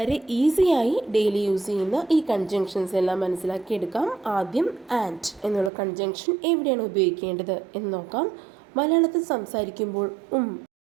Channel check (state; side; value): drops out; left; at 5.7 s